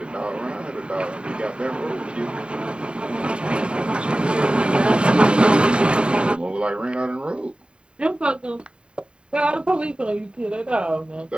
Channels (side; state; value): left; late; 0.052 ms